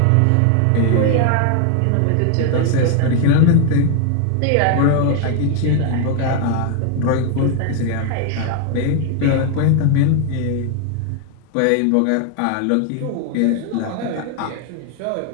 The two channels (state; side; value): different; both; correlation 0.00